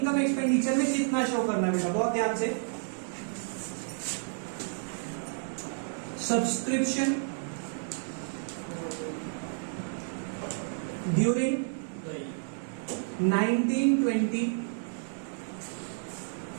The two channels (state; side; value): silent; left; digital silence